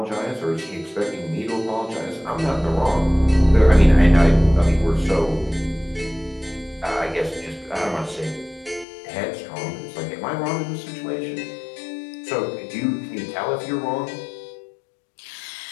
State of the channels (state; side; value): drops out; right; at 8.8 s